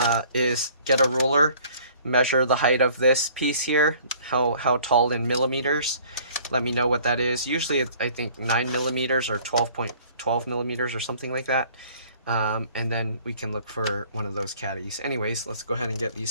is get a ruler, measure the height of this piece here, how tall in millimeters. Let me know what that is. Usually it's, I think, 9 millimeters or 12.12 millimeters or something like that. and then we can look for one of those caddies. Anyways, let's go ahead and get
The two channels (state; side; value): inverted; both; correlation -0.54